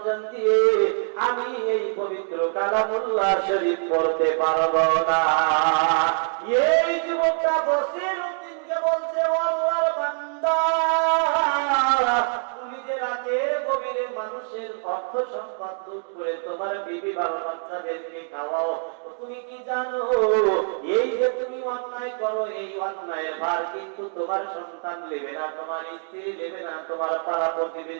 দিয়ে আমি এই পবিত্র কালামুল্লাহ শরীফ পড়তে পারবো না। এই যুবকটা বসির উদ্দিনকে বলছে, ও আল্লাহর বান্দা, তুমি যে রাতের গভীরে মানুষের অর্থ সম্পদ লুট করে তোমার বিবি বাবা বাচ্চাদেরকে খাওয়াও, তুমি কি জানো এই যে তুমি অন্যায় করো, এই অন্যায়ের ভার কিন্তু তোমার সন্তান নেবে না, তোমার স্ত্রী নেবে না, তোমার পাড়া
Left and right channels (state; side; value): silent; left; 56 dB below the other